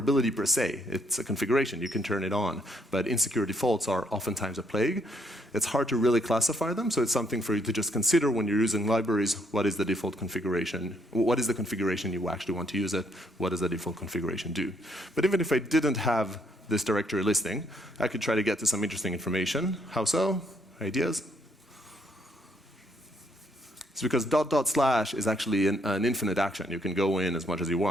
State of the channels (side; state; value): both; normal; correlation 0.71